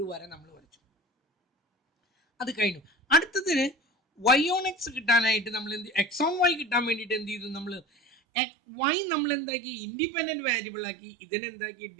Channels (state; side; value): drops out; left; at 8.2 s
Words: വര നമ്മൾ വരച്ചു. അത് കഴിഞ്ഞു. അടുത്തതിന് വൈ ഓൺ എക്സ് കിട്ടാനായിട്ട് നമ്മൾ എക്സ് ഓൺ വൈ കിട്ടാൻ വേണ്ടിയിട്ട് എന്ത് ചെയ്തു? നമ്മൾ വൈ നമ്മൾ എന്താക്കി? ഇൻഡിപെൻഡന്റ് വേരിയബിൾ ആക്കി. ഇതിനെന്താക്കി?